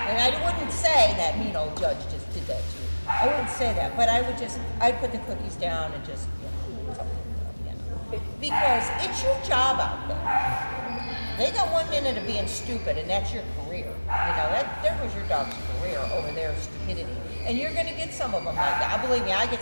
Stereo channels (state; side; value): inverted; both; correlation -1.00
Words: I wouldn't say that mean old judge just did that to you. I wouldn't say that, but I'd put the cookies down and just, you know, because it's your job out there. They got 1 minute of being stupid, and that's your career. You know, there was your dog's career over there, stupidity. And you're going to get some of them like that. Believe me, I